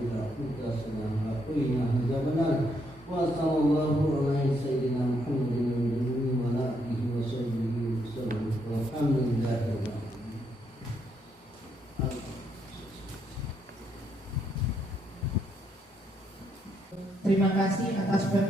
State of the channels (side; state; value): both; normal; correlation 0.75